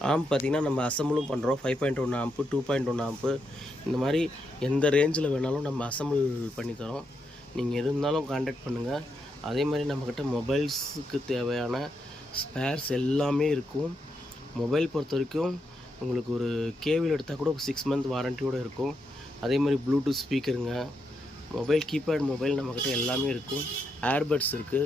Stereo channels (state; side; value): normal; both; correlation 0.82